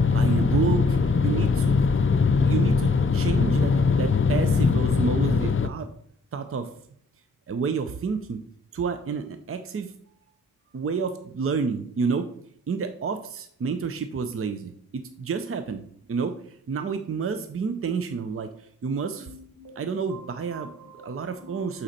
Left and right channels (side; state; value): both; normal; correlation 0.60